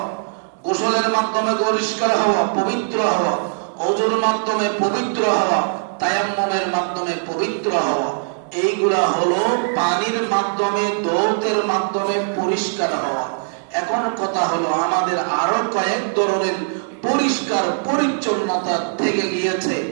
গোসলের মাধ্যমে পরিষ্কার হওয়া, পবিত্র হওয়া, ওযুর মাধ্যমে পবিত্র হওয়া, তায়াম্মুমের মাধ্যমে পবিত্র হওয়া। এইগুলা হলো পানির মাধ্যমে, দৌতের মাধ্যমে পরিষ্কার হওয়া। এখন কথা হলো আমাদের আরো কয়েক ধরনের পরিষ্কার পরিচ্ছন্নতা থেকে গিয়েছে।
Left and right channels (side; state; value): left; silent; digital silence